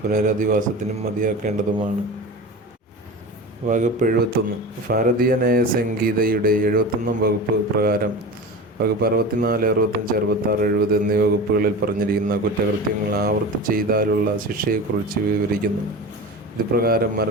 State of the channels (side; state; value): both; normal; correlation 0.31